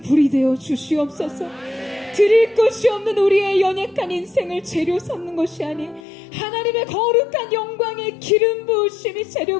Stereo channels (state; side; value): drops out; right; at 6.0 s